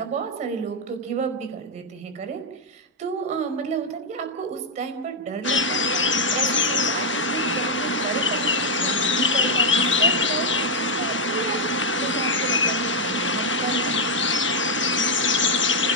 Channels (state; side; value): normal; both; correlation 0.00